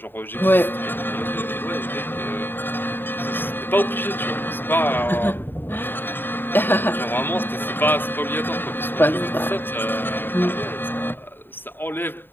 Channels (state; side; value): late; right; 0.096 ms